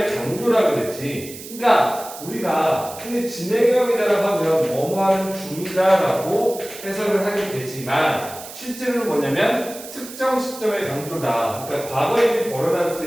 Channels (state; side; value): noise; right; hiss, 14 dB below the sound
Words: 강조라고 그랬지. 그러니까 우리가 흔히 진행형이라고 하면 뭐뭐하는 중이다라고 해석을 하게 되지만 실제로는 뭐냐면 특정 시점의 강조다. 그러니까 과거에 일이